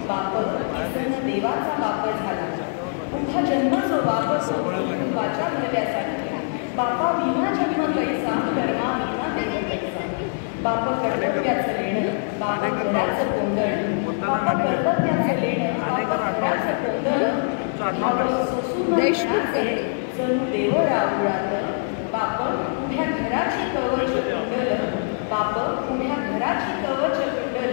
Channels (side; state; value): right; silent; 63 dB below the other